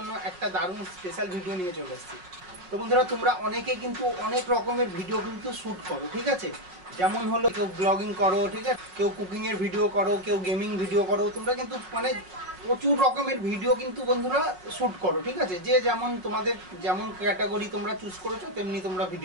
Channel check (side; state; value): left; late; 5.6 ms